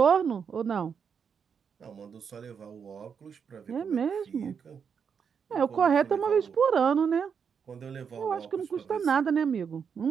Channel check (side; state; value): left; quieter; 6.7 dB